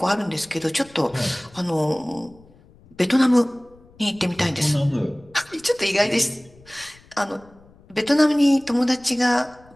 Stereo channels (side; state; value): left; noise; rumble, 27 dB below the sound